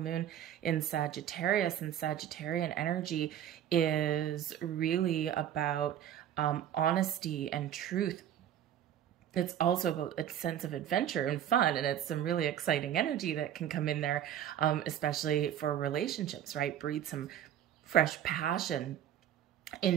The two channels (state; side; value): quieter; left; 10.6 dB